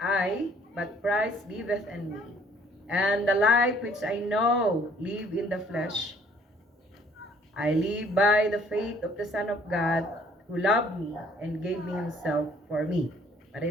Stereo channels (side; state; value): both; normal; correlation 0.60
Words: I, but Christ liveth in me. And the life which I know live in the flesh, I live by the faith of the Son of God, who loved me and gave me himself for me.